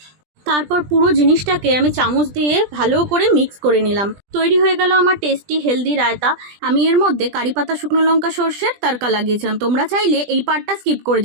তারপর পুরো জিনিসটাকে আমি চামচ দিয়ে ভালো করে মিক্স করে নিলাম। তৈরি হয়ে গেল আমার টেস্টি হেলদি রায়তা। আমি এর মধ্যে কারি পাতা, শুকনো লঙ্কা, সর্ষের তড়কা লাগিয়েছিলাম। তোমরা চাইলে এই পার্টটা স্কিপ করে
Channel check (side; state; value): left; late; 20 ms